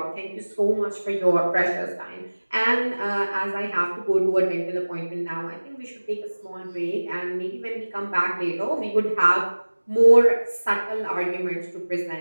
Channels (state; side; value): inverted; both; correlation -1.00